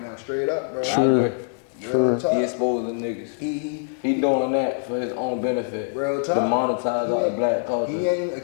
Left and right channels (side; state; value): right; silent; 63 dB below the other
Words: now, straight up, bro. True. Real He talk. exposing niggas. He doing that for his own benefit. real talk. To monetize He all ain't- the black culture. He ain't